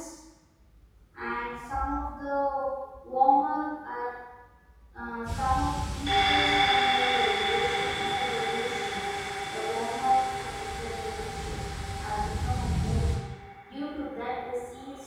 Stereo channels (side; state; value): both; identical; correlation 1.00